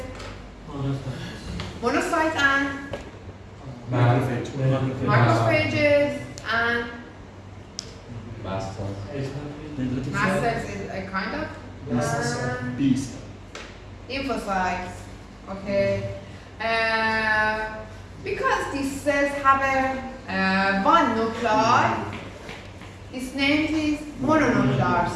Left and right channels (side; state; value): both; identical; correlation 1.00